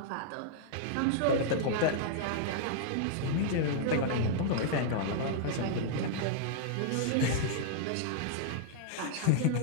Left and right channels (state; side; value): different; both; correlation -0.01